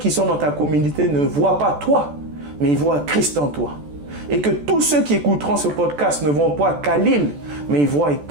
sont dans ta communauté ne voient pas toi, mais ils voient Christ en toi. Et que tous ceux qui écouteront ce podcast ne voient pas Khalil, mais ils voient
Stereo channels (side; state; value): left; late; 14 ms